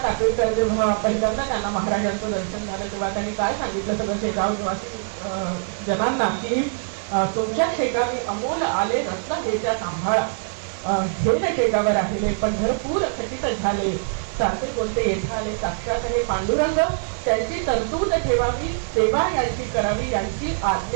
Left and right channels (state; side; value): silent; left; digital silence